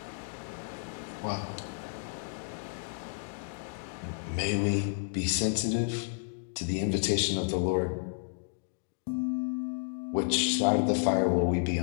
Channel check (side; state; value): right; silent; digital silence